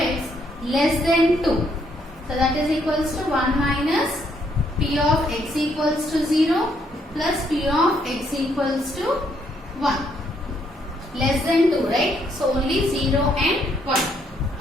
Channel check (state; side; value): normal; both; correlation 0.72